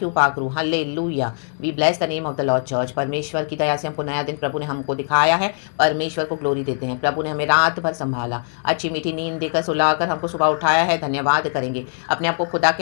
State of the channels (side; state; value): right; silent; 55 dB below the other